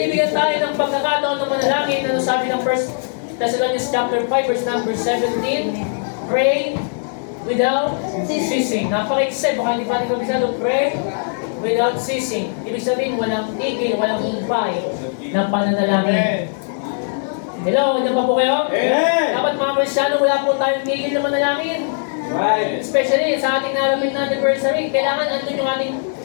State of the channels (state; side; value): silent; right; digital silence